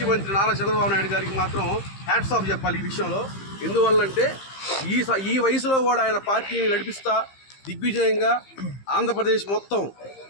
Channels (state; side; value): late; right; 15 ms